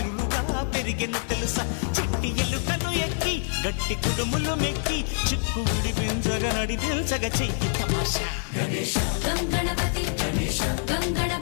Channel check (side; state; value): right; silent; digital silence